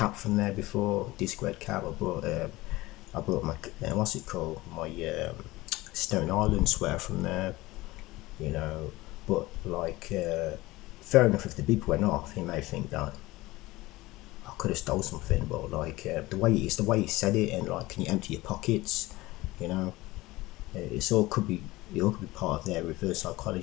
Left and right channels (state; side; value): quieter; right; 19.4 dB